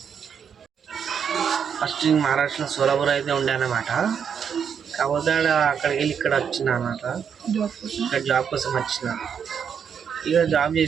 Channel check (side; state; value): left; quieter; 7.4 dB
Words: ఫస్ట్ మహారాష్ట్రలో సోలాపూర్ అయితే ఉండే అన్నమాట. కాకపోతే అక్కడికి వెళ్ళి ఇక్కడ వచ్చిన అన్నమాట, ఇక్కడ జాబ్ కోసం వచ్చిన. ఇక జాబ్